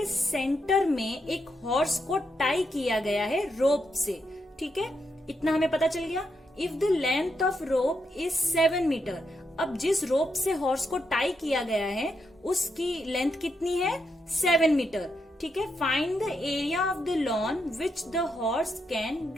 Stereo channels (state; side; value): normal; both; correlation 0.82